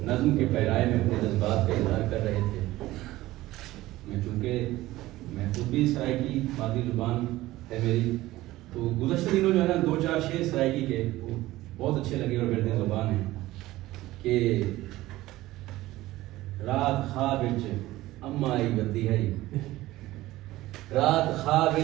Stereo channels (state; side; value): quieter; left; 17.0 dB